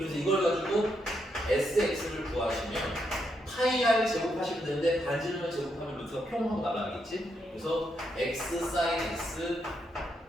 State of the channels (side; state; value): both; normal; correlation 0.80